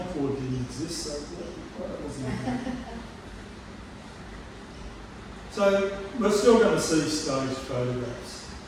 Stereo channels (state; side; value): identical; both; correlation 1.00